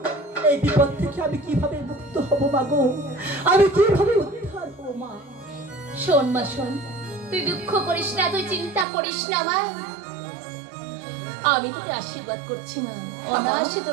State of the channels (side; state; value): left; drops out; at 8.8 s